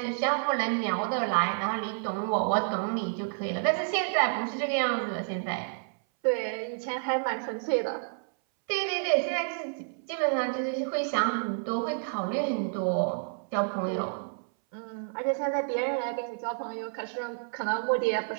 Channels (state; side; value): silent; left; 58 dB below the other